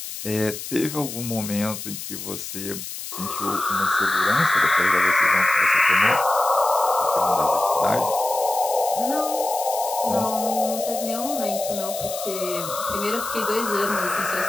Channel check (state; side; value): noise; left; hiss, 9 dB below the sound